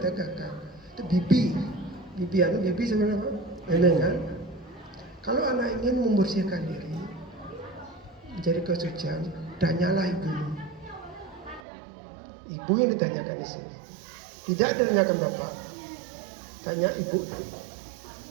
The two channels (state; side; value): drops out; left; at 11.6 s